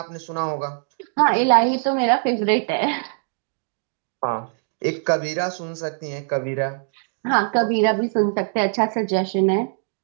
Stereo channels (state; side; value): silent; left; 62 dB below the other